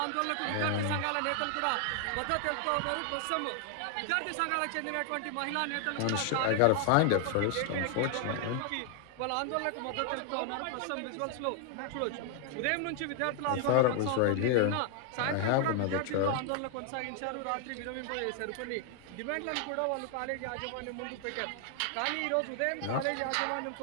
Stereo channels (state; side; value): different; both; correlation 0.00